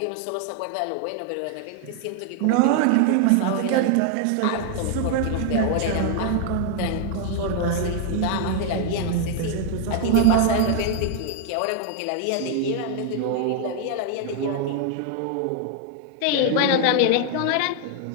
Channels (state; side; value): different; both; correlation 0.00